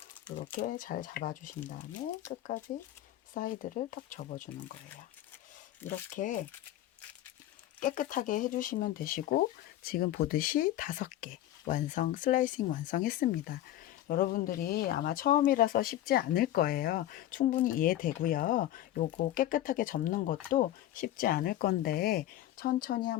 이렇게 잘 잡아 주신 다음에 끝까지 사이드를 턱 접어 주는 거예요. 이렇게 깨끗하게 해주시면 되시고, 지금 보듯이 5개 완성, 슬라이싱 완성했습니다. 여러분들이 아마 처음이라서 쉽지 않을 거예요. 충분히 이해되고요. 요거 깨끗하게 접는 것도 쉽지 않을 건데 천천히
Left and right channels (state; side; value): quieter; right; 13.5 dB